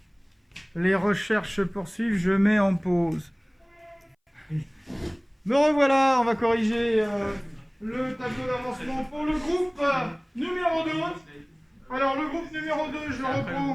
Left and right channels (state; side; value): identical; both; correlation 1.00